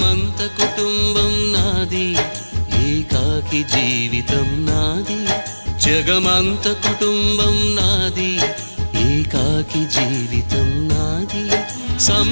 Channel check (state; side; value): inverted; both; correlation -1.00